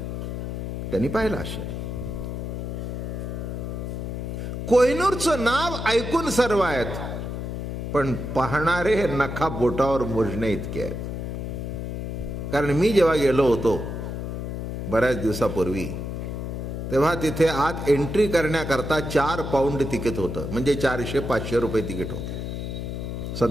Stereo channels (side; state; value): left; noise; hum, 5 dB below the sound